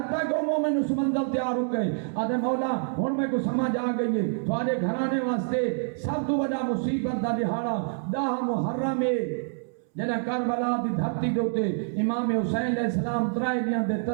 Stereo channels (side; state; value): left; silent; 60 dB below the other